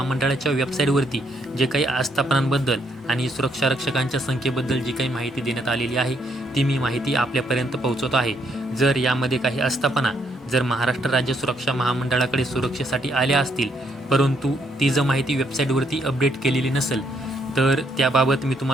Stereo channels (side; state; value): both; normal; correlation 0.73